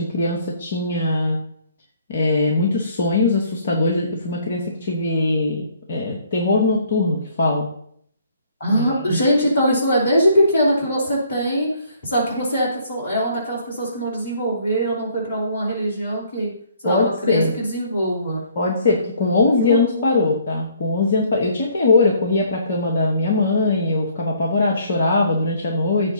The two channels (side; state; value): both; inverted; correlation -0.62